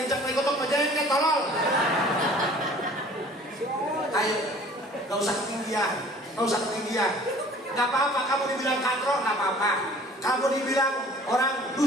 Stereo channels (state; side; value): normal; both; correlation 0.50